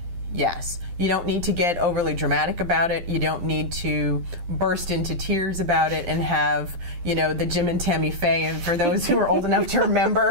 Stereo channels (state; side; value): late; left; 12 ms